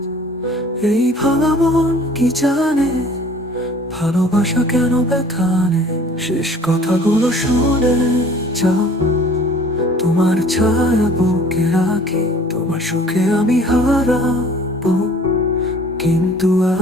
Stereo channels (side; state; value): both; normal; correlation 0.51